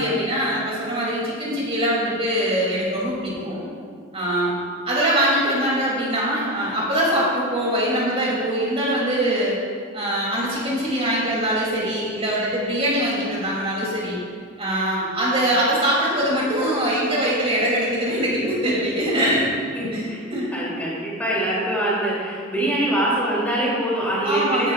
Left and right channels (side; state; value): both; normal; correlation 0.17